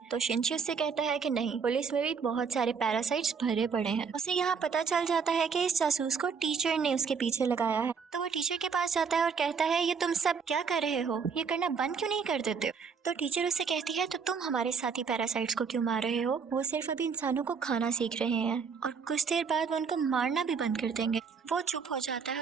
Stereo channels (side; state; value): left; quieter; 5.9 dB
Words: तो शिंची उससे कहता है कि नहीं, पुलिस में भी बहुत सारे पैरासाइट्स भरे पड़े हैं। उसे यहाँ पता चल जाता है कि इस जासूस को टीचर ने उसके पीछे लगाया है। तो वो टीचर के पास जाता है और कहता है ये तुम सब क्या कर रहे हो, ये करना बंद क्यों नहीं कर देते हो। तो टीचर उससे कहती है तो तुम हमारे साथी पैरासाइट्स को क्यों मार रहे हो, वो सिर्फ अभी इंसानों को खाना सीख रहे हैं और कुछ देर बाद वो उनको मारना भी बंद कर देंगे। वो चुप हो जाता है